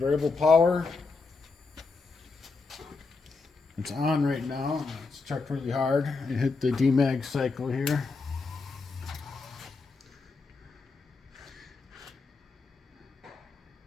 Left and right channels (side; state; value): right; quieter; 4.1 dB